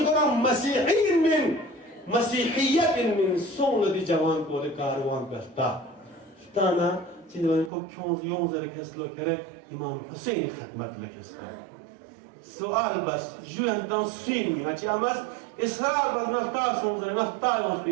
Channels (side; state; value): left; drops out; at 7.7 s